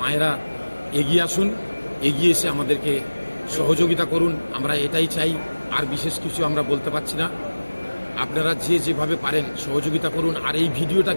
মায়েরা এগিয়ে আসুন, এগিয়ে এসে আমাদেরকে সহযোগিতা করুন। আমরা এটাই চাই, আর বিশেষ কিছু আমরা বলতে পারছি না। আপনারা যেভাবে পারেন সহযোগিতা করুন, আর এই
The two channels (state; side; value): inverted; both; correlation -1.00